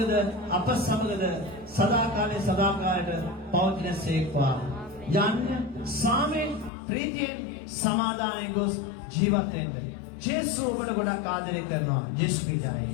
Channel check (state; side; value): drops out; right; at 6.7 s